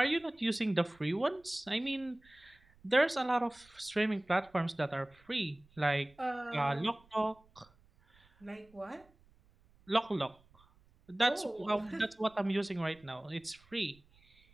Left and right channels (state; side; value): noise; right; rumble, 30 dB below the sound